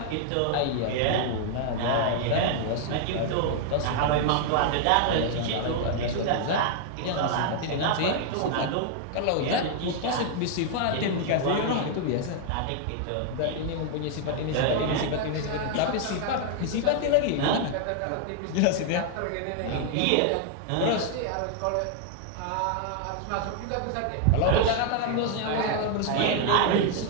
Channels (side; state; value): both; different; correlation 0.00